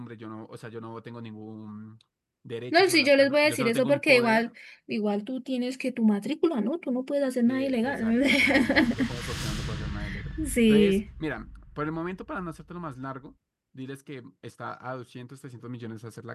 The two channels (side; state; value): both; identical; correlation 1.00